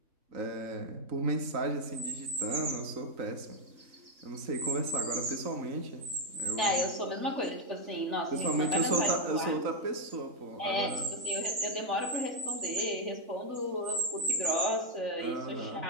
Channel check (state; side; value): late; left; 3.9 ms